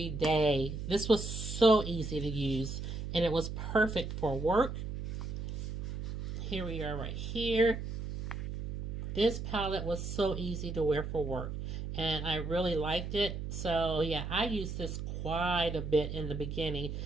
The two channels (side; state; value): right; noise; hum, 5 dB below the sound